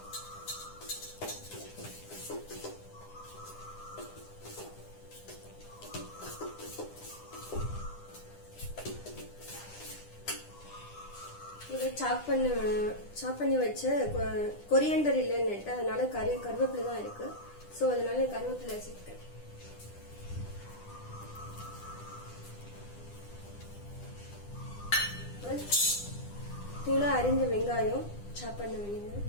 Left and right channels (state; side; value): late; right; 9.9 ms